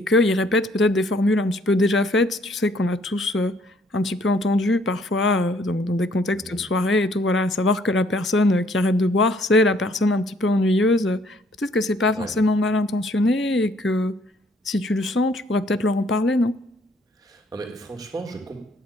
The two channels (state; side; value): normal; both; correlation 0.63